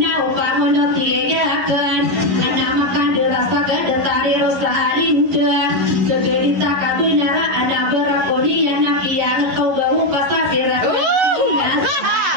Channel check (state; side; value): late; left; 11 ms